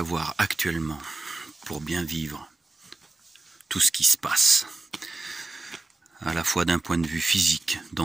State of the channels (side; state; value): left; quieter; 3.2 dB